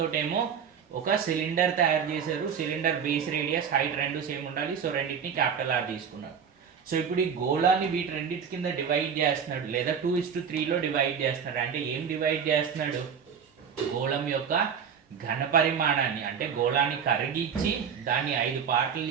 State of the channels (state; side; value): quieter; left; 7.1 dB